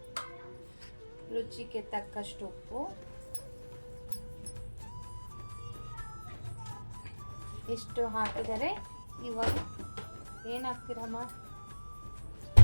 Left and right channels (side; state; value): both; inverted; correlation -1.00